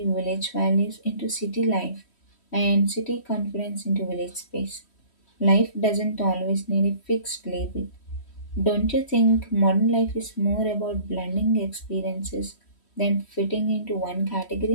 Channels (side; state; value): right; late; 3.1 ms